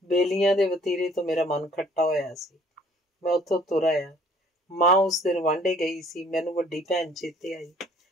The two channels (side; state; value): both; normal; correlation 0.57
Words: ਬੇਲੀਆਂ ਦੇ ਵਤੀਰੇ ਤੋਂ ਮੇਰਾ ਮਨ ਖੱਟਾ ਹੋਇਆ ਸੀ। ਮੈਂ ਉੱਥੋਂ ਤੁਰ ਆਇਆ। ਮਾਂ ਉਸ ਦਿਨ ਵਾਂਢੇ ਗਈ ਸੀ। ਮੈਨੂੰ ਵੱਡੀ ਭੈਣ ਚੇਤੇ ਆਈ।